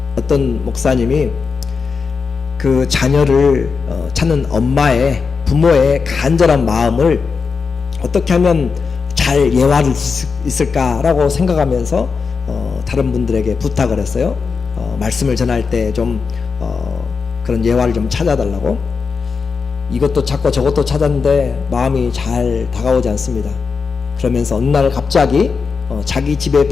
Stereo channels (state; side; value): quieter; right; 5.2 dB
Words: 어떤 목사님이 그 자녀를 찾는 부모의 간절한 마음을 어떻게 하면 잘 예화를 있을까라고 생각하면서 다른 분들에게 부탁을 했어요. 말씀을 전할 때 좀 그런 예화를 좀 찾아달라고. 이것도 찾고 저것도 찾았는데 마음이 잘 다가오지 않습니다. 그러면서 어느 날 갑자기 자기 집에